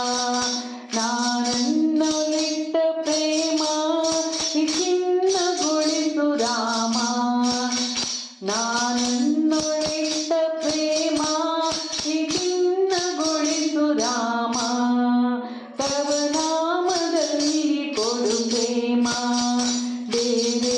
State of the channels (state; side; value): identical; both; correlation 1.00